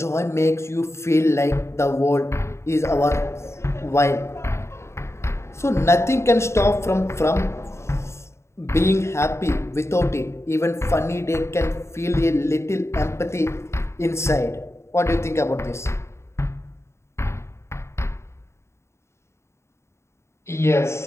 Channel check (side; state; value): right; late; 0.13 ms